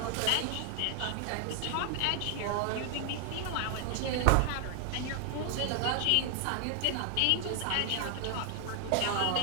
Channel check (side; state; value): both; different; correlation 0.00